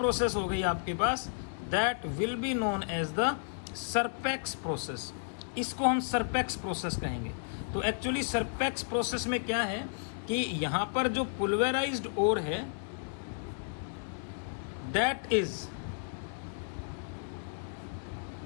हो गई आपके पास, that will be known as the Serpeck's process. इसको हम सरपेक्स प्रोसेस कहेंगे। तो एक्चुअली सरपेक्स प्रोसेस में क्या है कि यहां पर जो पुल्वेराइज्ड ओर है that is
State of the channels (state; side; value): silent; right; digital silence